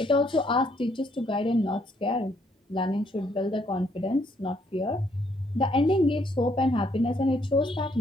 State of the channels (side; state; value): both; normal; correlation 0.70